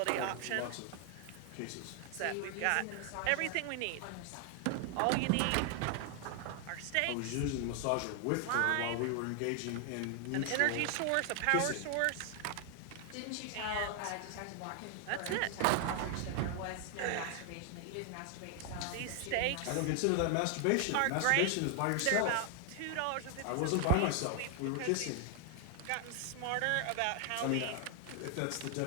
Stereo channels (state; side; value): different; both; correlation 0.00